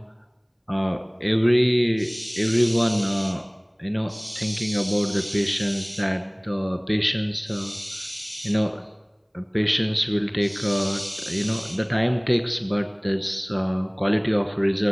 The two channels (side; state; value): both; identical; correlation 1.00